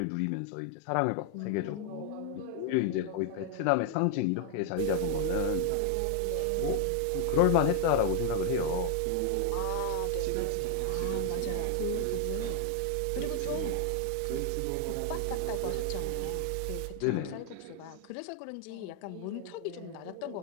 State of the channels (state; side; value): different; both; correlation 0.00